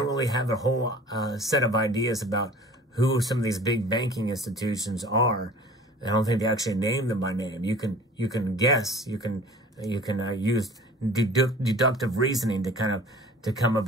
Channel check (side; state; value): both; normal; correlation 0.45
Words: really have a whole set of ideas about who some of these big banking institutions are. I don't think they actually name them by name. You can guess. You can use deductive reasoning to come